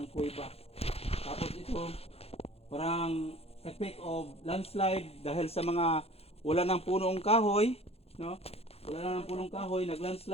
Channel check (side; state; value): right; late; 0.29 ms